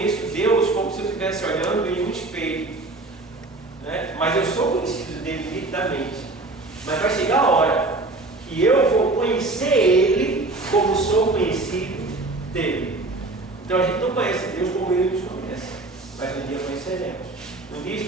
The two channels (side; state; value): left; quieter; 3.1 dB